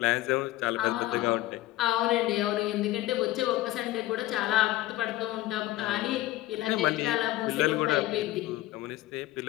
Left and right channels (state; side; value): quieter; right; 16.4 dB